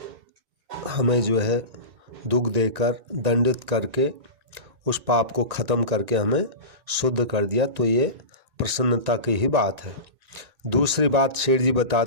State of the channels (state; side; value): late; left; 1.9 ms